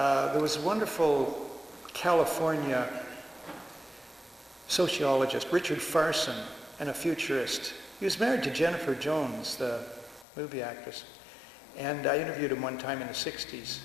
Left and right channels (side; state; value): right; drops out; at 10.2 s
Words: was a wonderful California sociologist, Richard Farson, and a futurist. He was married to Jennifer Jones, the movie actress. And I interviewed him one time in the 60s